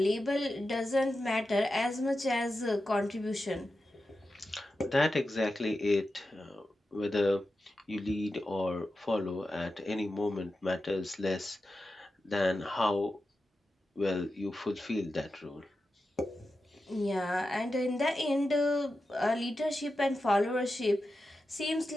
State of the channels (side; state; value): both; normal; correlation 0.91